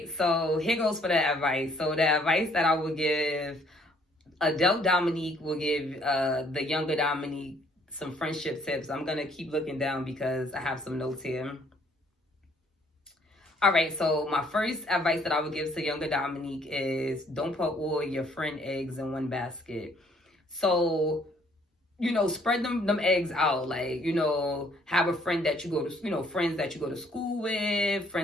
so here goes for the advice. So the advice that I would give, adult Dominique will give the younger Dominique some friendship tips. I'm gonna keep looking down because I have some notes here. All right, so my first advice that I would give to younger Dominique is don't put all your friend eggs in one basket. So, spread them eggs out. Like, have a friend that you go to, friends that you go to school with,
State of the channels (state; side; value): normal; both; correlation 0.64